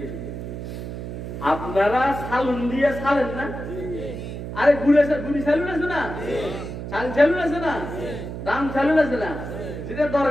আপনারা সালুন দিয়ে ছাড়েন না? আরে গুড়ি চালুন আছে না, চাল চালুন আছে না, দাম চালুন আছে না, যেটা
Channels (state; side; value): noise; right; hum, 7 dB below the sound